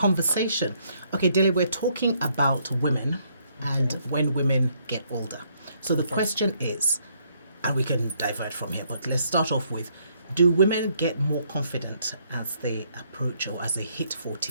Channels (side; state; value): both; inverted; correlation -0.70